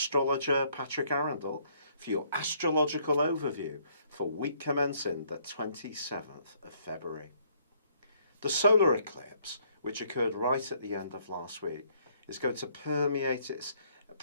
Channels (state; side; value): inverted; both; correlation -0.66